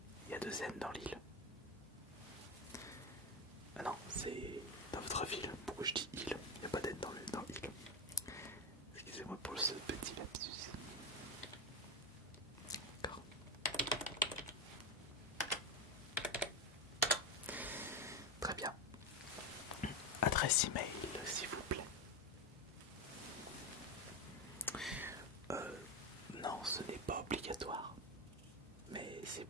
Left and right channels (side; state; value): both; normal; correlation 0.13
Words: Il y a 2 N dans l'île. Ah non, c'est dans votre ville. Pourquoi je dis île? Il n'y a pas d'N dans l'île. Excusez-moi pour ce petit lapsus. D'accord. Très bien. Adresse email, s'il vous plaît. Non, ce n'est pas obligatoire. Mais c'est